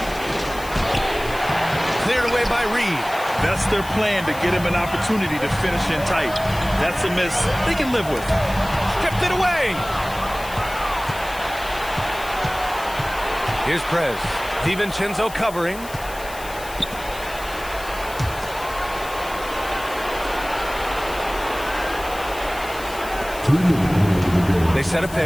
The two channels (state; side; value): noise; left; hiss, 15 dB below the sound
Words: Cleared away by Reed. That's their plan, to get him an opportunity to finish in tight. That's a miss they can live with. Stripped it away. Here's Prez. DiVincenzo covering. They set a